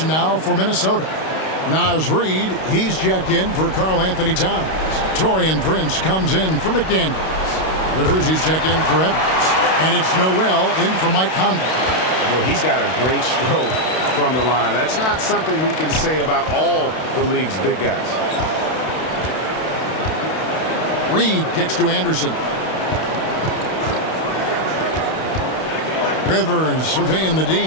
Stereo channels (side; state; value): right; late; 32 ms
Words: now for Minnesota. Naz Reid, he's checked in for Karl Anthony Towns. Taurean Prince comes in for McDaniels. Rivers, he's checked in for Edwards. And it's Noel in for Mike Conley. Well, he's got a great stroke from the line. That's not something we can say about all the league's big guys. Reid kicks to Anderson. Rivers surveying the